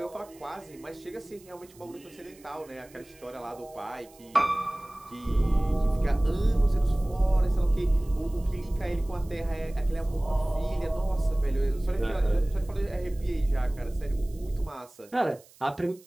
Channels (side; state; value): right; noise; hiss, 26 dB below the sound